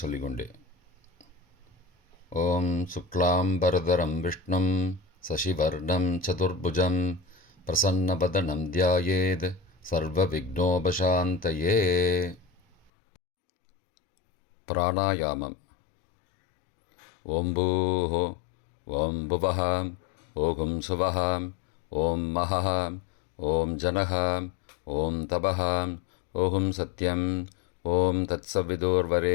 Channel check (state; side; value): drops out; right; at 12.9 s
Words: சொல்லிக்கொண்டே. ஓம் சுக்லாம்பரதரம் விஷ்ணும் சசிவர்ணம் சதுர்புஜம் பிரசன்னபதனம் தியாயேத் சர்வ விக்னோபசாந்தயே. பிராணாயாமம். ஓம் பூஹோ, ஓம் புவஹ, ஓம் சுவஹ, ஓம் மஹஹ, ஓம் ஜனஹ, ஓம் தபஹ, ஓம் சத்யம், ஓம்